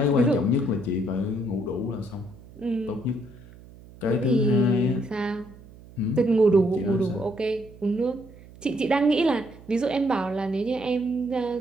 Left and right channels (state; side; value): noise; right; hum, 21 dB below the sound